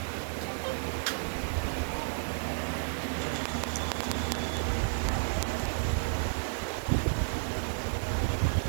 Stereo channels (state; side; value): silent; left; digital silence